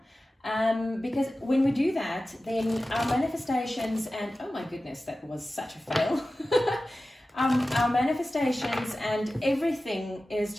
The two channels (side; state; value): both; normal; correlation 0.95